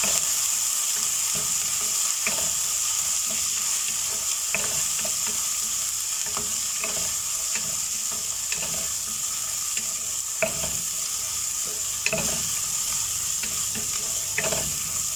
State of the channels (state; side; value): identical; both; correlation 1.00